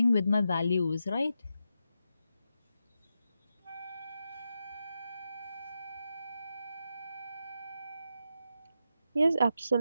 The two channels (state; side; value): inverted; both; correlation -0.86